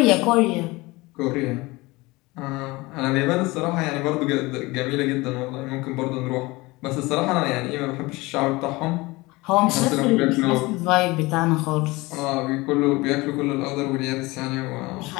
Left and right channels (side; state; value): right; quieter; 22.4 dB